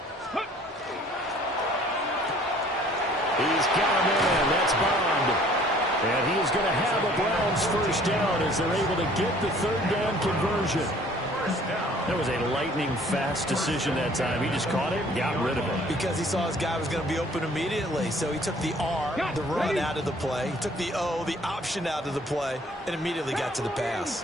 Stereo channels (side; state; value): both; normal; correlation 0.55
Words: He's got him in. That's Bond. And he is going to have a Browns 1st down as they're able to get the 3rd down conversion. That was a lightning-fast decision that time. He just caught it and got rid of it. Because he saw his guy was going to be open immediately. So he took the R, the run, out of the play. He took the O, the option, out of the play, and immediately got to the